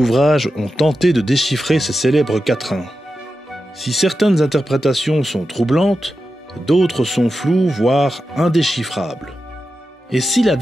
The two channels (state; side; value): normal; both; correlation 0.91